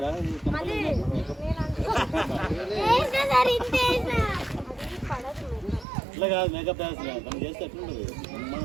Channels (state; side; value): drops out; left; at 5.9 s